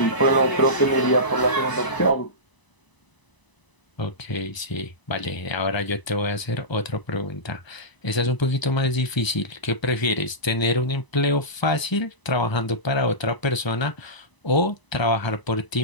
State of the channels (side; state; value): right; late; 1.0 ms